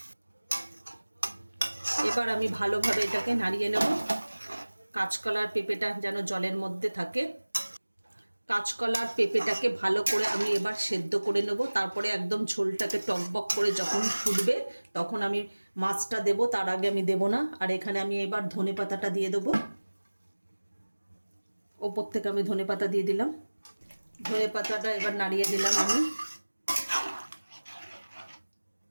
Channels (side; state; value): both; inverted; correlation -1.00